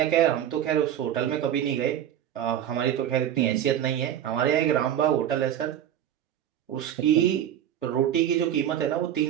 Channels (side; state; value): left; quieter; 10.7 dB